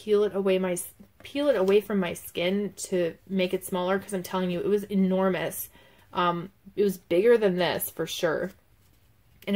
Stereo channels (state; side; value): identical; both; correlation 1.00